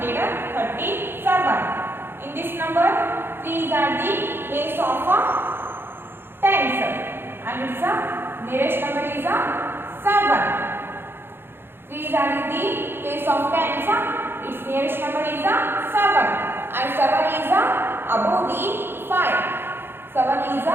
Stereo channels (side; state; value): left; late; 0.11 ms